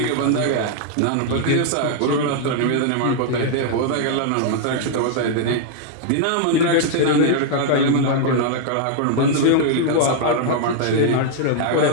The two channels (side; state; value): both; different; correlation -0.01